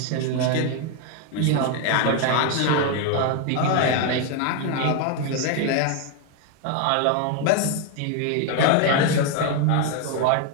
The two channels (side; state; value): both; different; correlation 0.01